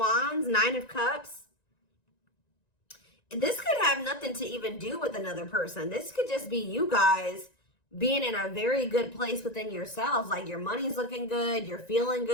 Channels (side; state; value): right; late; 1.9 ms